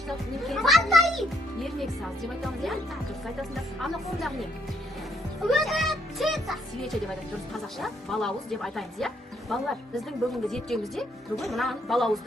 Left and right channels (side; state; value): both; normal; correlation 0.71